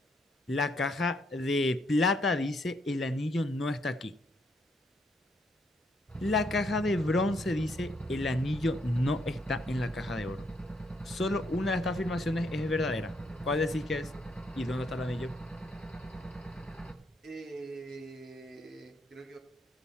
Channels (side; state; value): both; normal; correlation 0.73